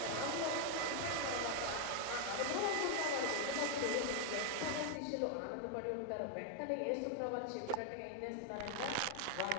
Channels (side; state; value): both; different; correlation 0.00